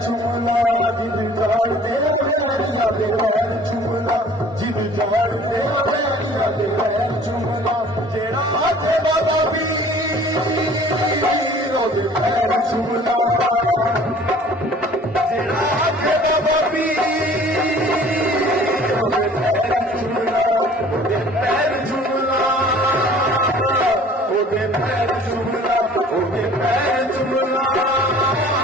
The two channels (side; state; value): both; normal; correlation 0.50